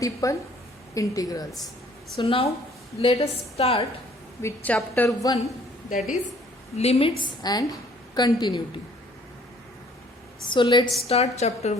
integrals. So now let us start with chapter 1, that is limits and continuity. So let's start chapter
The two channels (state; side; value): normal; both; correlation 0.58